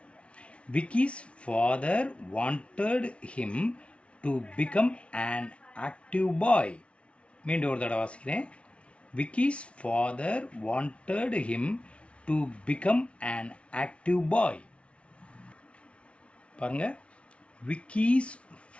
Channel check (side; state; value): right; late; 0.061 ms